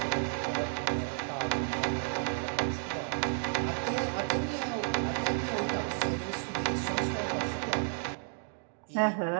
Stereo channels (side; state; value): left; silent; digital silence